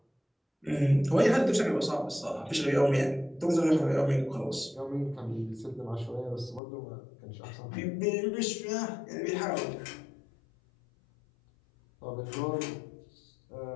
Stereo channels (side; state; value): right; drops out; at 6.6 s